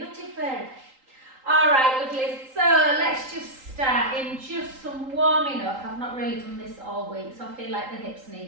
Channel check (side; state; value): left; late; 3.8 ms